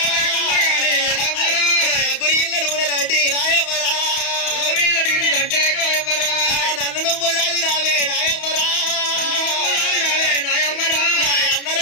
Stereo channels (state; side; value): late; right; 31 ms